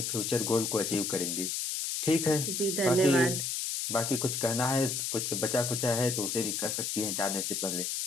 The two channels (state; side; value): noise; left; hiss, 1 dB below the sound